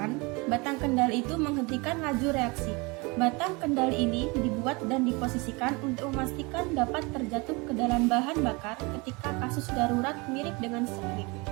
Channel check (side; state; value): left; quieter; 27.1 dB